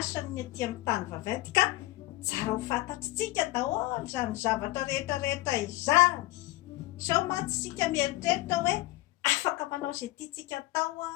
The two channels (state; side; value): quieter; right; 18.6 dB